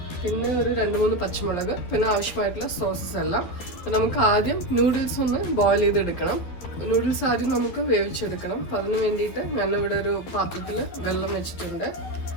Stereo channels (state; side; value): late; right; 12 ms